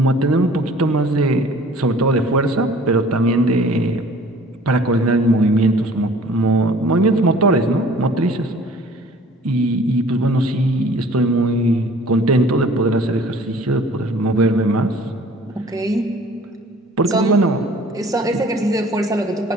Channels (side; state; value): both; normal; correlation 0.50